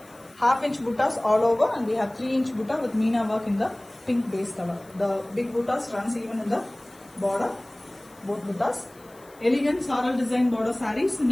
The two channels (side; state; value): left; noise; hiss, 27 dB below the sound